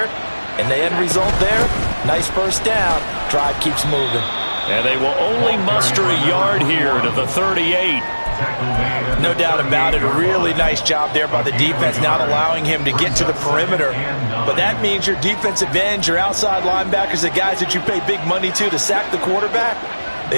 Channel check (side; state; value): both; inverted; correlation -1.00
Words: And the end result there, nice first down. Drive keeps moving. And they will only muster a yard here to the 38. No doubt about it. A really nice job there by the defense, not allowing him to get to the perimeter. But that means your defensive ends, your outside linebackers, the guys that you pay big money to sack the quarterback, they